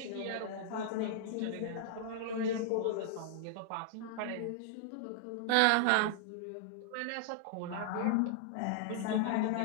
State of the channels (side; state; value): both; different; correlation -0.01